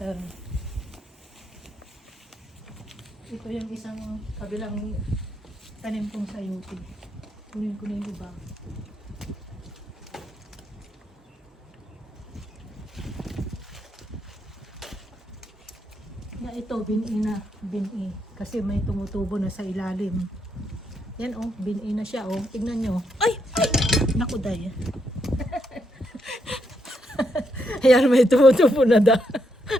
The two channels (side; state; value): both; normal; correlation 0.78